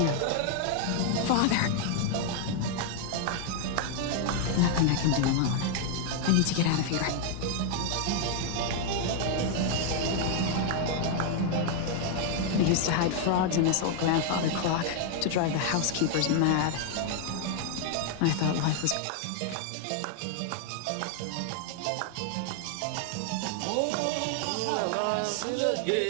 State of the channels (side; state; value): both; different; correlation 0.00